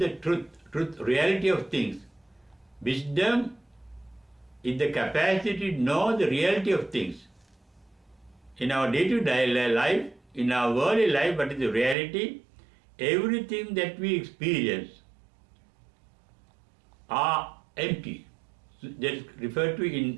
truth, reality of things. Wisdom is the capacity to know the reality of things. In our day-to-day life, in our worldly life, what is the reality? Everything that we experience are empty. That is referred to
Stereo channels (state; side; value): drops out; left; at 12.0 s